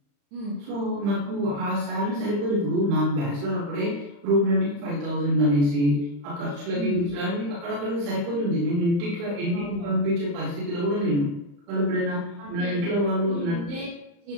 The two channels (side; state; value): left; late; 35 ms